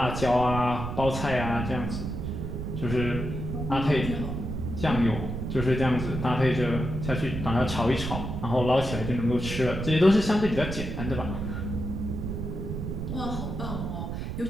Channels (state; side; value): noise; right; rumble, 4 dB below the sound